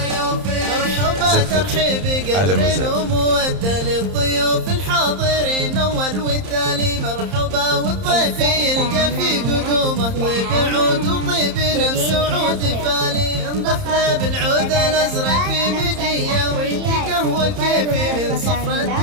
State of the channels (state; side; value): late; left; 30 ms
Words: مرحبا ترحيب قدر ومودة للضيوف الحاضرين اول والتالي. مرحبا والضيف يلقى في قدومه طيب عود وطيب نفس عود فالي. انضفنا بالعود الازرق في مجيه ويدي قهوه الكيفي من صفر